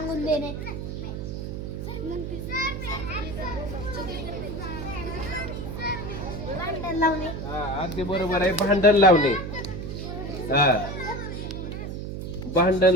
देणे. भांडण लावणे. अगदी बरोबर आहे. भांडण लावणे. भांडण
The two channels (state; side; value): noise; right; hum, 6 dB below the sound